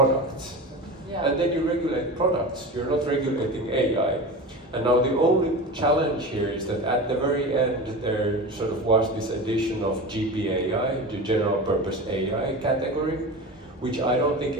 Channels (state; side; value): normal; both; correlation 0.29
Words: Yeah. And then you regulate products, you're not regulating AI. And now the only challenge here is that at the very end, there sort of was this addition of GPAI, the general purpose AI category, which I don't think